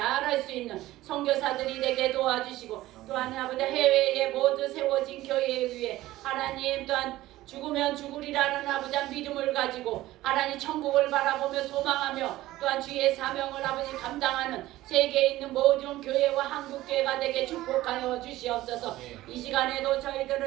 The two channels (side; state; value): left; quieter; 16.3 dB